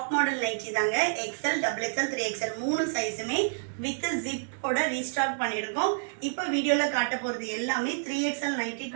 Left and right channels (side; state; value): left; silent; 59 dB below the other